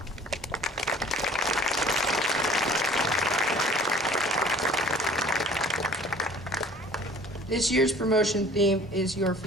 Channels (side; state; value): both; normal; correlation 0.50